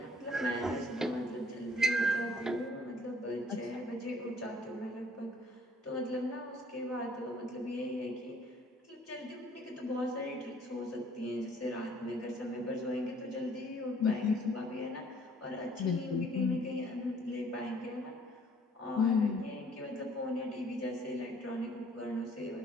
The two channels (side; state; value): both; normal; correlation 0.59